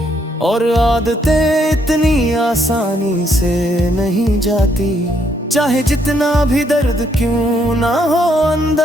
और आदतें इतनी आसानी से नहीं जाती, चाहे जितना भी दर्द क्यों ना हो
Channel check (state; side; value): normal; both; correlation 0.72